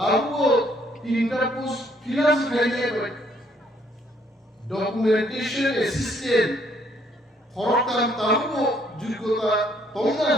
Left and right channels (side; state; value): both; normal; correlation 0.67